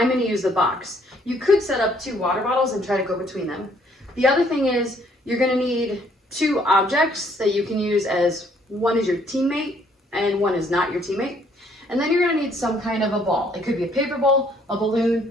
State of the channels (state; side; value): normal; both; correlation 0.65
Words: going to use the box. You could set up 2 water bottles and try to go between them. The other thing is you're going to need 2 objects that you can use as one is your teammate and one is not your teammate. And then you're going to need some kind of a ball. It could be a paper ball, a